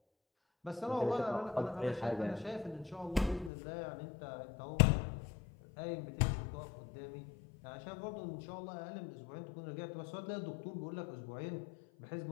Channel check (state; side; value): drops out; right; at 3.5 s